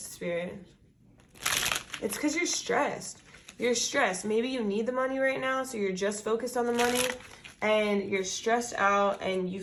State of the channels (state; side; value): identical; both; correlation 1.00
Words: Spirit? It's because you're stressed. You're stressed. Maybe you need the money right now, so you're just focused on the money, and you're stressed out, and you